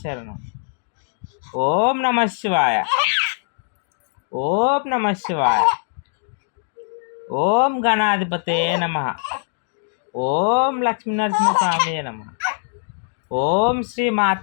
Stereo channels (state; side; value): silent; right; digital silence